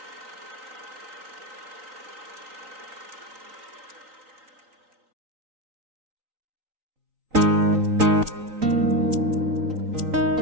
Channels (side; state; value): left; late; 3.9 ms